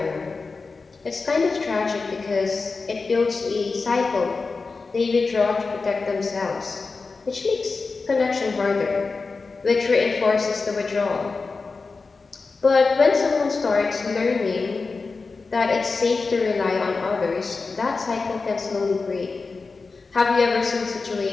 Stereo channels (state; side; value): quieter; right; 4.2 dB